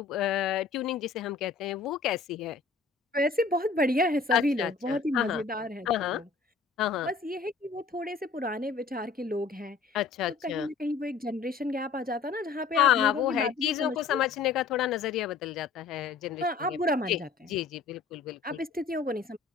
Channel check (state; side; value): quieter; right; 4.9 dB